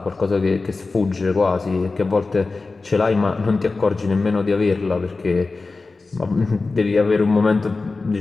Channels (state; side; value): quieter; right; 3.8 dB